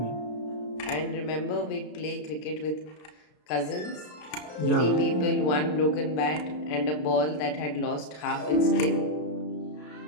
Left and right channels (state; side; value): late; right; 33 ms